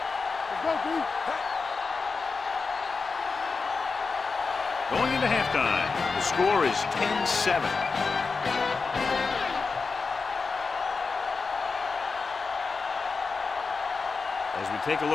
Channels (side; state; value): right; quieter; 4.5 dB